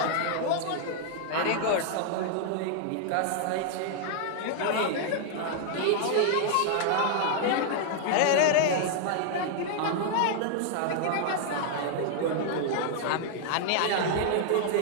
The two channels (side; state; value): both; different; correlation -0.01